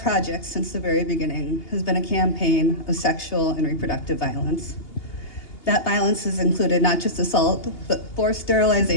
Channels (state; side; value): late; right; 2.8 ms